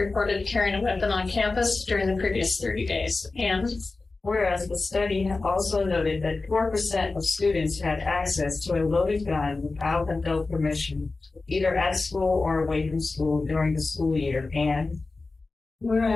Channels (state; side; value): quieter; right; 3.6 dB